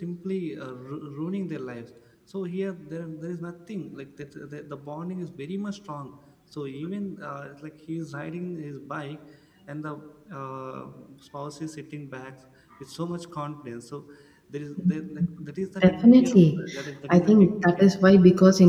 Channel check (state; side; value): identical; both; correlation 1.00